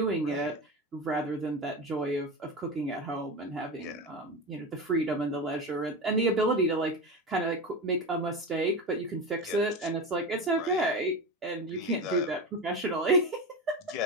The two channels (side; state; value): both; normal; correlation 0.22